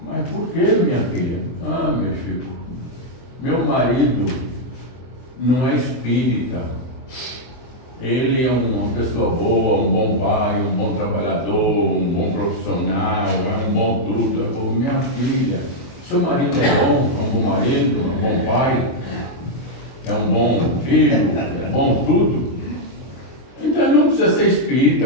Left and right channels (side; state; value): right; late; 23 ms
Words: Mas por que, minha filha? Ah, meu Chico, meu marido não é espírita. Ele é uma pessoa boa, um bom pai, um bom trabalhador, um bom profissional, é um bom tudo. Eu falei: minha filha, seu marido é um bom marido, é um bom pai, é um bom filho, é bom tudo. Então não precisa ser